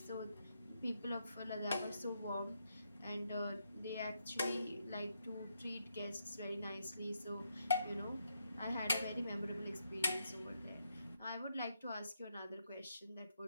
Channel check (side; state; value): both; inverted; correlation -0.80